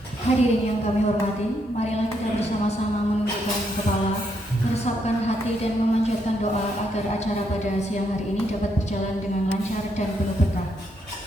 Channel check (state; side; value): normal; both; correlation 0.76